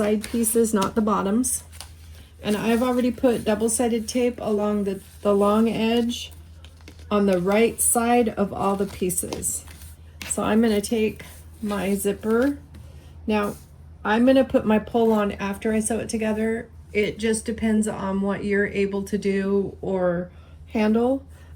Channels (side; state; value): both; identical; correlation 1.00